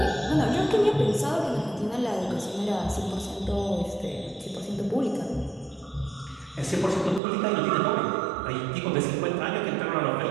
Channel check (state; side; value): drops out; left; at 7.2 s